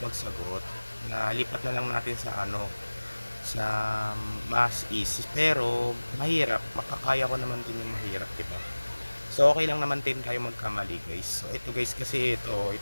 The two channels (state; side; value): inverted; both; correlation -1.00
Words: magsagot, nalipat na lang natin sa sa mas easy. Pero mahirap, makakaya ko naman din yung mahirap, diba? So okay lang naman din tayo magkamali guys. So ito guys, kasi ito